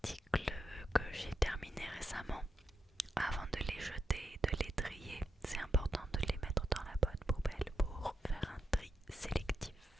que j'ai terminés récemment. Avant de les jeter, de les trier, c'est important de les mettre dans la bonne poubelle pour faire un tri sélectif.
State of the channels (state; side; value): normal; both; correlation 0.84